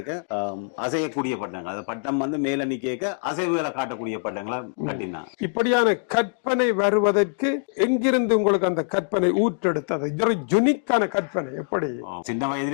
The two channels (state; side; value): silent; right; 60 dB below the other